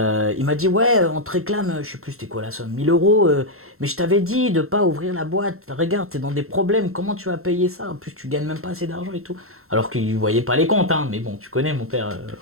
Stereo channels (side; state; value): left; late; 0.62 ms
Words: m'a dit, ouais, on te réclame, je sais plus c'était quoi la somme, 1000 euros, mais je t'avais dit de pas ouvrir la boîte. Regarde, t'es dans des problèmes, comment tu vas payer ça? En plus, tu gagnes même pas assez d'argent et tout. Alors qu'il voyait pas les comptes, hein, mais bon, tu connais mon père,